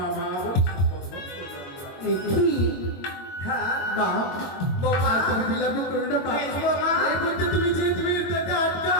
বলে সম্বোধন করবে। কি? হ্যাঁ, মা, বৌমা, তুমি বিলাপ করো না মা। বেশ বৌমা। এই বুদ্ধি তুমি যে তুমি তাতে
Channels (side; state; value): right; late; 22 ms